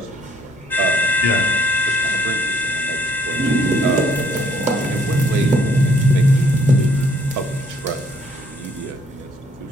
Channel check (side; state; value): both; normal; correlation 0.65